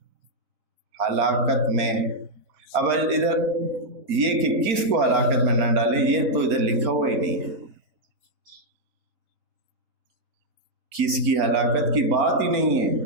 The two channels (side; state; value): left; late; 4.3 ms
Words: ہلاکت میں۔ اب ادھر یہ کہ کس کو ہلاکت میں نہ ڈالے، یہ تو ادھر لکھا ہوا ہی نہیں ہے، کس کی ہلاکت کی بات ہی نہیں ہے۔